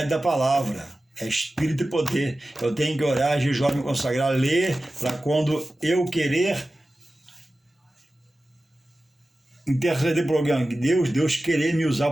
da palavra. É espírito e poder. Eu tenho que orar, jejuar, me consagrar, ler, para quando eu querer interceder por alguém. Deus querer me usar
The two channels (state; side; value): normal; both; correlation 0.95